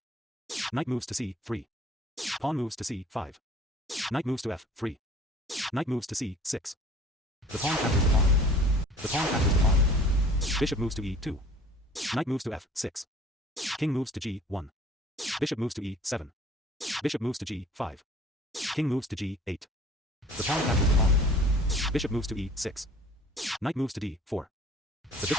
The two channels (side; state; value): both; normal; correlation 0.51